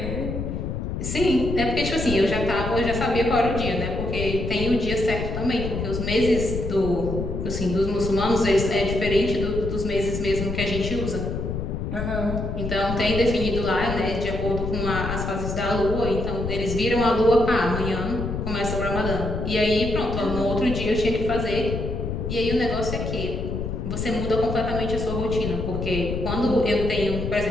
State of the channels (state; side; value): noise; left; rumble, 4 dB below the sound